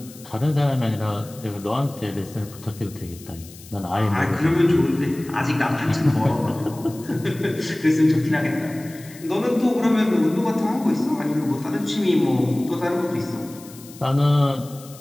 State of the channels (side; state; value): left; noise; hiss, 20 dB below the sound